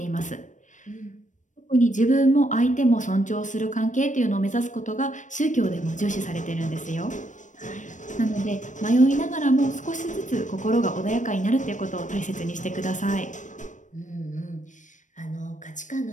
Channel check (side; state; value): right; late; 0.36 ms